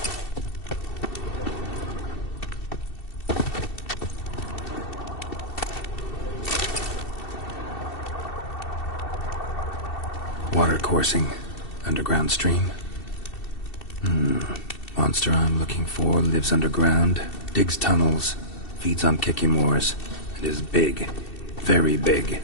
Water coursing. Underground stream. Monster I'm looking for lives underground, digs tunnels, feeds on Kikimors, and is big. Very big.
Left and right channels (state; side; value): late; right; 2.7 ms